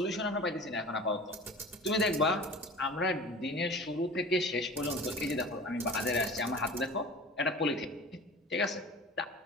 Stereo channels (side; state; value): both; normal; correlation 0.39